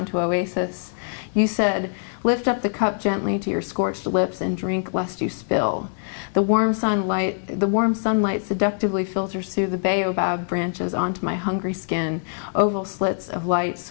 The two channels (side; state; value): right; silent; 57 dB below the other